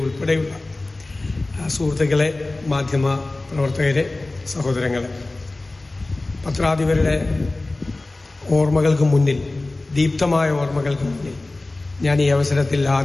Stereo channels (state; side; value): quieter; right; 3.0 dB